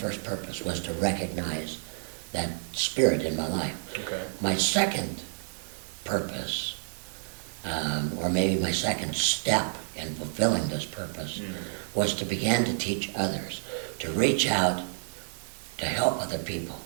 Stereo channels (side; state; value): left; silent; 58 dB below the other